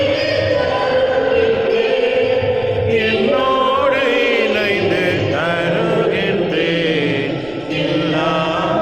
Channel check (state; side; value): noise; right; rumble, 24 dB below the sound